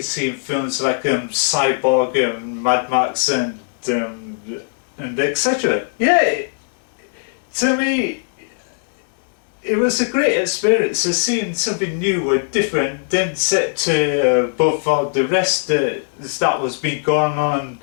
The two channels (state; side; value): silent; right; digital silence